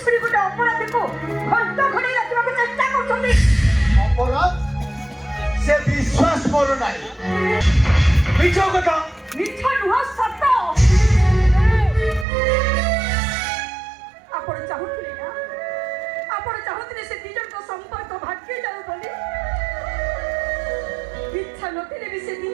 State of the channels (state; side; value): drops out; left; at 12.2 s